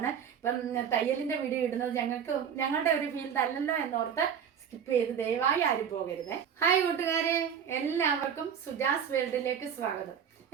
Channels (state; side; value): quieter; left; 7.9 dB